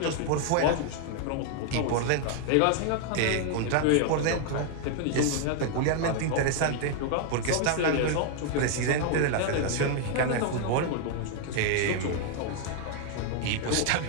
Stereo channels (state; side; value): different; both; correlation 0.00